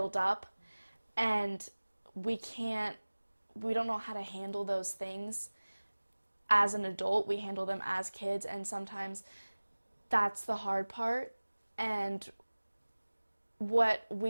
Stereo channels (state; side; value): inverted; both; correlation -1.00